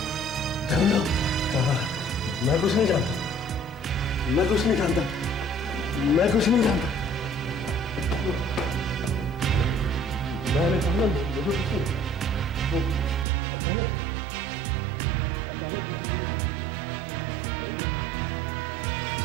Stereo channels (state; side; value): drops out; left; at 13.2 s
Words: जान लो, मैं कुछ नहीं जानता, मैं कुछ नहीं जानता, मैं कुछ नहीं जानता। मैंने कहा मुझे कुछ नहीं। अचानक अचानक किसी ने